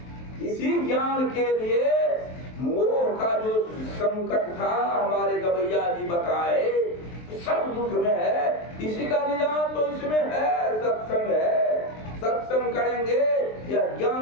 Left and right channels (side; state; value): right; late; 23 ms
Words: इसी ज्ञान के लिए मोह का जो संकट था हमारे गवैया जी बताए, सब दुख में है। इसी का निदान तो इसमें है, सत्संग है। सत्संग करेंगे या